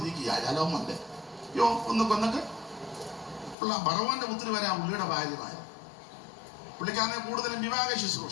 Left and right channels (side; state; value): right; drops out; at 3.6 s